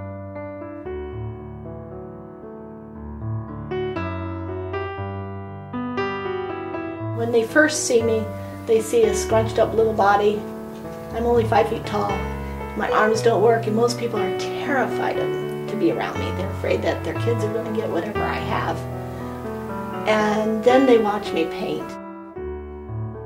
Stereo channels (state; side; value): identical; both; correlation 1.00